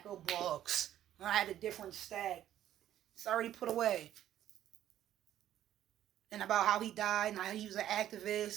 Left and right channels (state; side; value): quieter; left; 11.9 dB